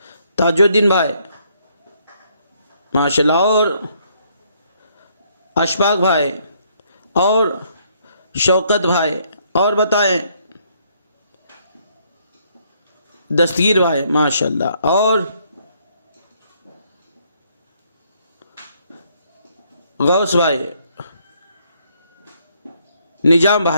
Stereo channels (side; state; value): both; inverted; correlation -0.69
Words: تاج الدین بھائی، ماشاءاللہ۔ اور اشفاق بھائی، اور شوکت بھائی، اور بتائیں؟ دستگیر بھائی، ماشاءاللہ۔ اور غوث بھائی، نظام